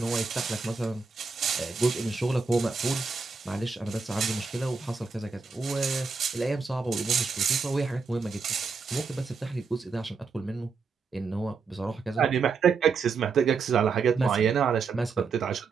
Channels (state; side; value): quieter; left; 4.9 dB